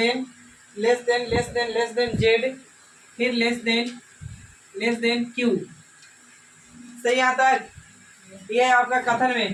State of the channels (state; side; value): identical; both; correlation 1.00